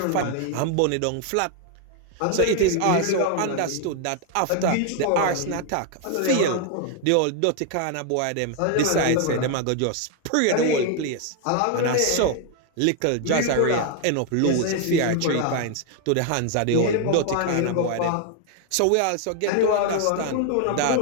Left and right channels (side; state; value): both; different; correlation 0.00